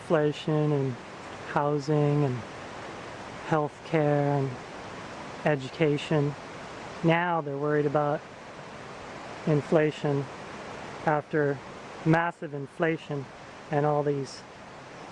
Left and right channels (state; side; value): identical; both; correlation 1.00